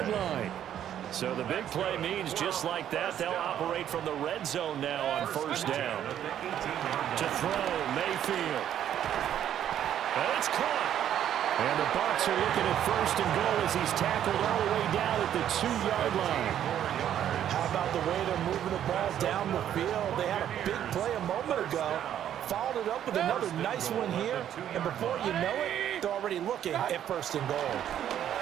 line. So the big play means just like that, they'll operate from the red zone now on first down. To throw, Mayfield. And it's caught. And the Bucs are looking at first and goal as he's tackled all the way down at the 2-yard line. How about the way they're moving the ball down the field? They had a big play a moment ago. Followed it up with another nice one here. And before you know it, they're already looking at first and goal.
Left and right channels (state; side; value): quieter; left; 10.5 dB